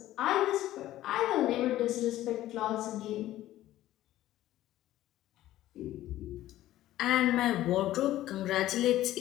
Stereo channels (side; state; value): right; quieter; 14.4 dB